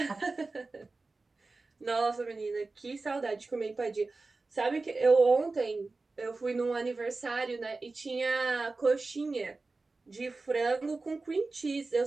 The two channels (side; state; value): left; quieter; 3.6 dB